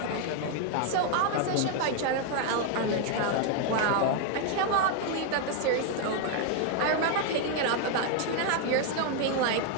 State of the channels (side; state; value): both; different; correlation 0.00